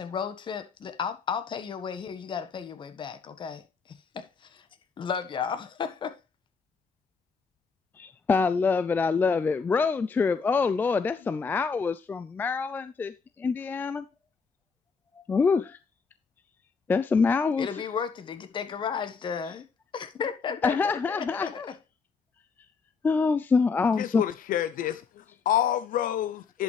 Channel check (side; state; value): right; quieter; 5.2 dB